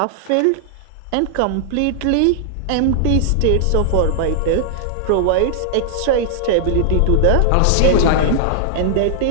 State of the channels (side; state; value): both; different; correlation -0.01